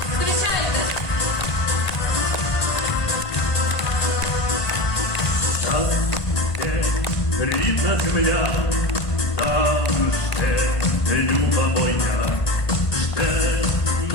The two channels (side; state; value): right; late; 1.5 ms